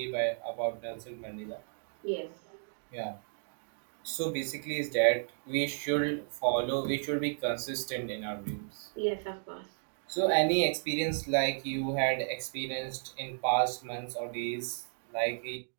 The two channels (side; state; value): left; silent; digital silence